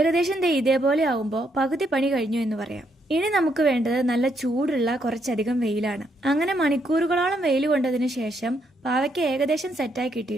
ഇതേപോലെ ആവുമ്പോ പകുതി പണി കഴിഞ്ഞു എന്ന് പറയാം. ഇനി നമുക്ക് വേണ്ടത് നല്ല ചൂടുള്ള കുറച്ചധികം വെയിലാണ്. അങ്ങനെ മണിക്കൂറുകളോളം വെയിൽ കൊണ്ടതിനു ശേഷം പാവയ്ക്ക ഏകദേശം സെറ്റായി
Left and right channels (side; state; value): both; normal; correlation 0.75